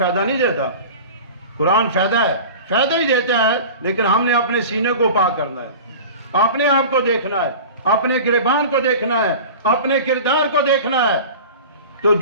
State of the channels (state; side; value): inverted; both; correlation -0.36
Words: نہیں دیتا. قرآن فائدہ ہی دیتا ہے لیکن ہم نے اپنے سینے کو پاک کرنا ہے, اپنے آپ کو دیکھنا ہے, اپنے گریبان کو دیکھنا ہے, اپنے کردار کو دیکھنا ہے. تو